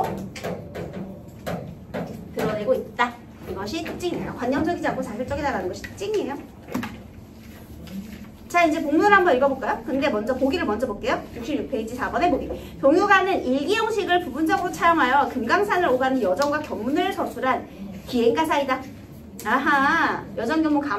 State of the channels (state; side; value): identical; both; correlation 1.00